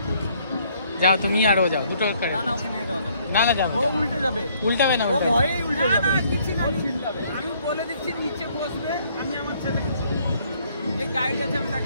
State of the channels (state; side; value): inverted; both; correlation -0.65